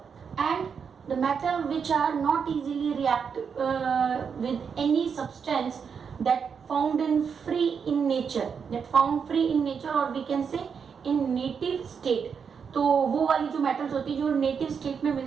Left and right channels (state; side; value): quieter; left; 6.5 dB